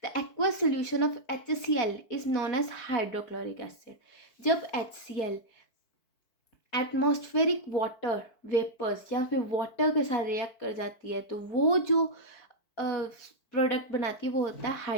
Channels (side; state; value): right; late; 4.5 ms